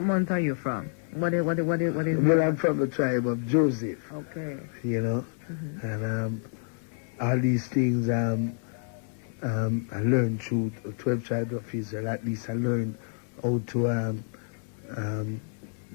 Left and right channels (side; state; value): right; silent; 59 dB below the other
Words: month are you from? What is Well, I'm from the tribe of Joseph. Okay. You know, and all these things I learned through the 12 tribes of Israel. At least I learned how to